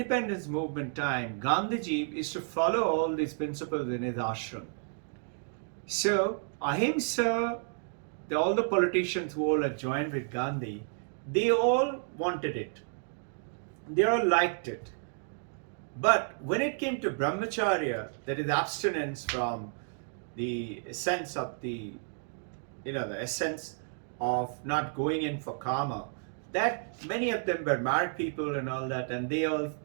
movement time, Gandhiji is to follow all these principles in his ashram. So, ahimsa, all the politicians who all had joined with Gandhi, they all wanted it. They all liked it. But when it came to brahmacharya, that is abstinence from the essence of the essence of not going in for karma, that many of them were married people and all that, and they all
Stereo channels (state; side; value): silent; left; 57 dB below the other